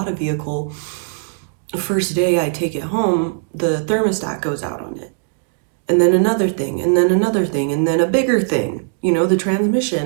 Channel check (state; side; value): silent; left; digital silence